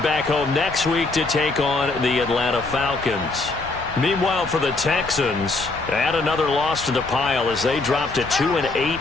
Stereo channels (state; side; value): quieter; right; 3.4 dB